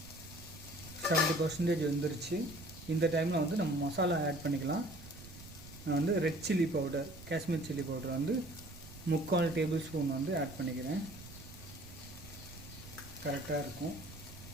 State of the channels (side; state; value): right; noise; rumble, 16 dB below the sound